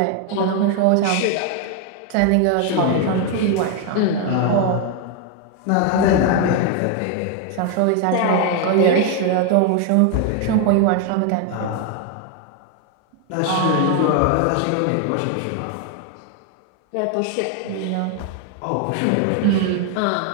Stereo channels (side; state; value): both; different; correlation 0.01